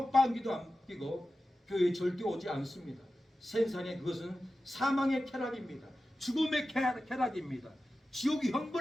안 끼고 교회에 절대 오지 않습니다. 세상에 그것은 사망의 쾌락입니다. 죽음의 쾌락입니다. 지옥이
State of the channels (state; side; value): normal; both; correlation 0.93